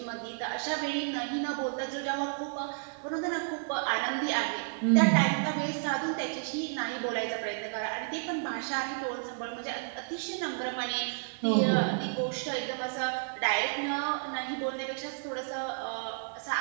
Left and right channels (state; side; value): silent; left; digital silence